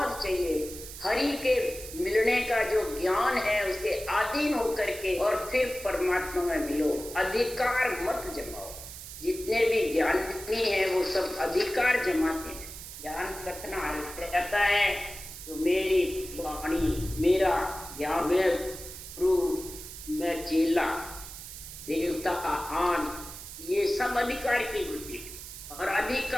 चाहिए, हरि के मिलने का जो ज्ञान है उसके अधीन होकर के और फिर परमात्मा में मिलो। अधिकार मत जमाओ। जितने भी ज्ञानी हैं वो सब अधिकार जमाते हैं। ज्ञान कतना रहता है तो मेरी वाणी, मेरा यावे प्रभु, मैं चेला, देवता आन, ये सब अधिकार की वृत्ति है। और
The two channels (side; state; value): right; noise; hiss, 12 dB below the sound